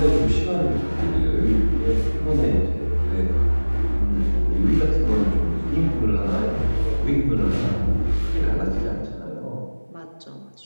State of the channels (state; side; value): inverted; both; correlation -1.00